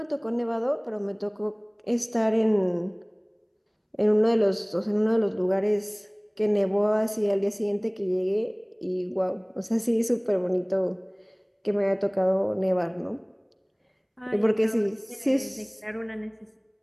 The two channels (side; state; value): both; identical; correlation 1.00